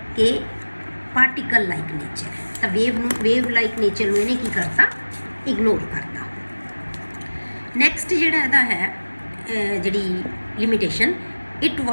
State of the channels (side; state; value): both; inverted; correlation -1.00